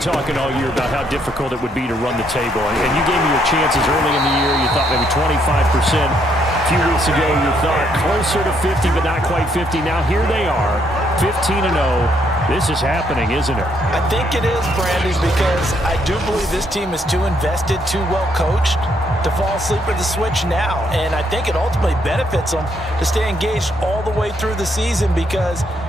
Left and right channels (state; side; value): normal; both; correlation 0.72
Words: all year about how difficult it would be to run the table. And you gave me your chances early in the year. You thought maybe 25%. A few weeks ago, you thought closer to 50, but not quite 50. Now, here they are, 15-0. This is happening, isn't it? I think it is, Brandon, because I do believe this team is too invested, too well coached to fall asleep at the switch now. And I think it ultimately benefits them to stay engaged all the way through the season because